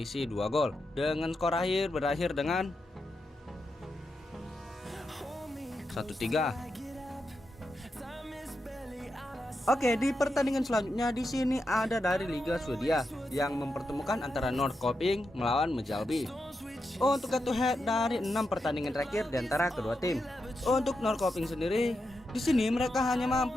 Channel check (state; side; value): normal; both; correlation 0.86